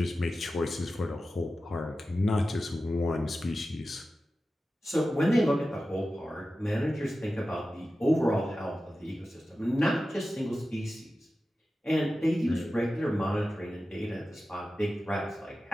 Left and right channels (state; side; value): normal; both; correlation 0.94